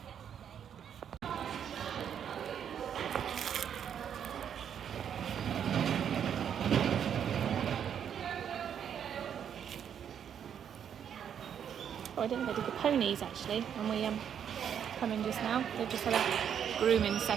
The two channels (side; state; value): left; quieter; 8.6 dB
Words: Oh, I didn't know they did the ponies actually when we come in just now. They've just had a grooming